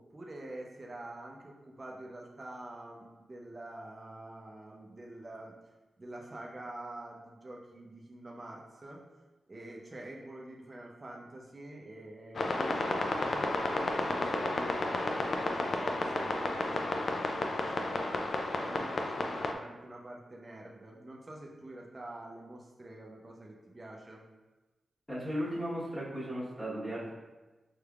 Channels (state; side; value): normal; both; correlation 0.89